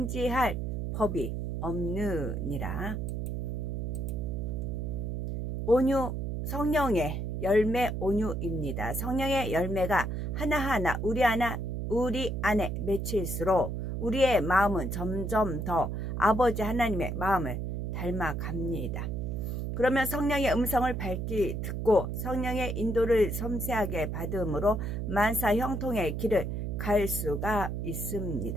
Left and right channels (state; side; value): noise; right; hum, 2 dB below the sound